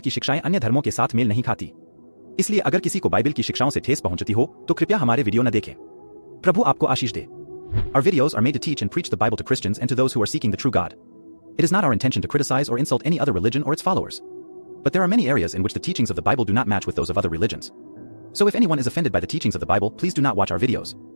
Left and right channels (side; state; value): both; inverted; correlation -1.00